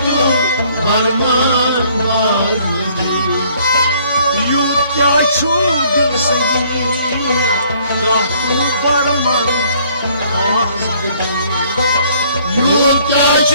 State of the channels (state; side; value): inverted; both; correlation -0.61